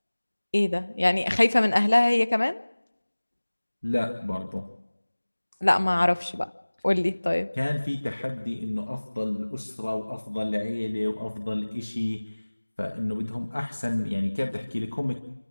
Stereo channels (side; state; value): both; inverted; correlation -1.00